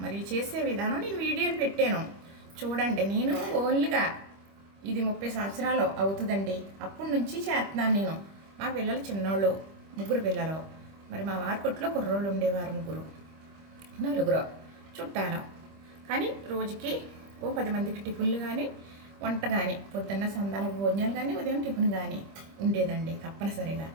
మరి చేసే విధానం నేను వీడియోలు పెట్టాను చూడండి. నేను ఓన్లీగా ఇది 30 సంవత్సరాలు అవుతుందండి, అప్పటి నుంచి చేస్తున్నాను నేను. మా పిల్లలు చిన్నోళ్ళు, 3 పిల్లలు. మరి మా వారి కొట్లో కుర్రోళ్ళు ఉండేవారు 3, 4 చుట్టాలు. కానీ రోజుకి ఓ 10 మందికి టిఫిన్లు కానీ వంట కానీ, పొద్దున్న సందాల భోజనాలు కానీ ఉదయం టిఫిన్ కానీ ఉండేదండి తప్పనిసరిగా.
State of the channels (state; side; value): late; left; 25 ms